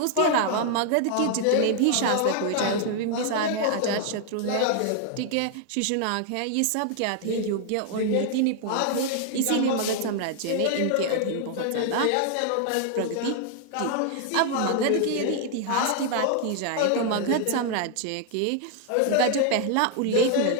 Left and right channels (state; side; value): different; both; correlation 0.00